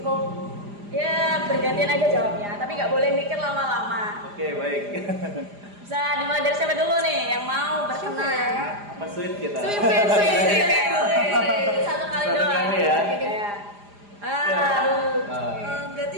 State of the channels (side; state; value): left; late; 4.9 ms